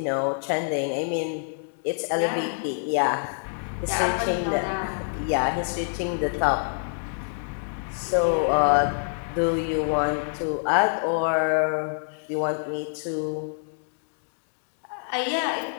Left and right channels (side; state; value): right; silent; digital silence